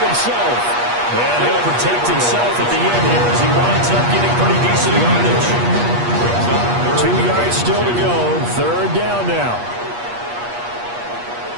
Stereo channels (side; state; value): left; late; 8.4 ms